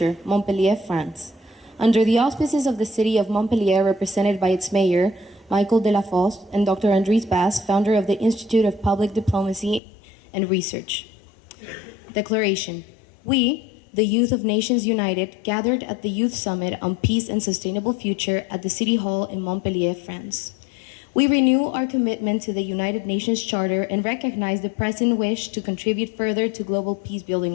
Montpellier, France. Under the auspices of the city of Montpellier, represented by its mayor, Michael Delafosse, and Dr. Andries Bass, founder of the Institute of Public Diplomacy and Research. Declaration. We, the youth of Nations United, gathered at the Youth Summit on Peace and Sustainable Future at the City Hall in Montpellier, France. We renew our commitment to the United Nations Charter and recognize the present wish to contribute further to global peace-building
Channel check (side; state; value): right; drops out; at 9.8 s